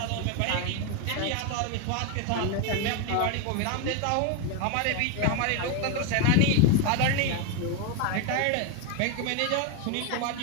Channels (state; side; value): different; both; correlation 0.02